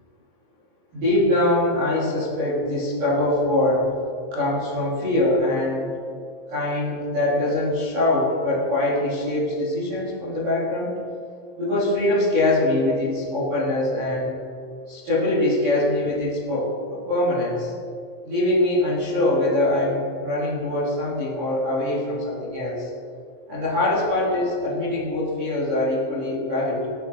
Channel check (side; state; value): left; late; 23 ms